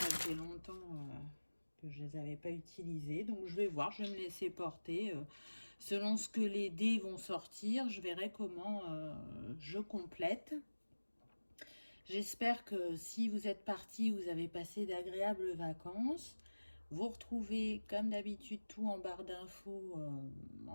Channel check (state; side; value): inverted; both; correlation -1.00